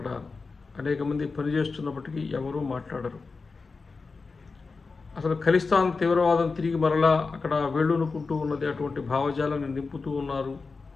అనేక మంది పనిచేస్తున్నప్పటికీ ఎవరూ మాట్లాడరు. అసలు ఖలిస్తాన్ తీవ్రవాదం తిరిగి మరలా అక్కడ వేళ్ళూనుకుంటూ ఉన్నది, అటువంటి భావజాలను నింపుతూ ఉన్నారు,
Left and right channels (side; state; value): right; quieter; 4.3 dB